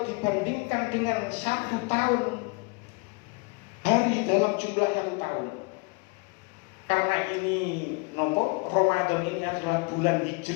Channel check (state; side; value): quieter; right; 30.5 dB